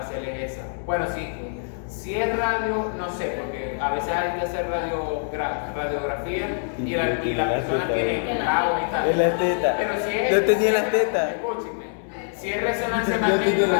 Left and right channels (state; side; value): silent; right; 62 dB below the other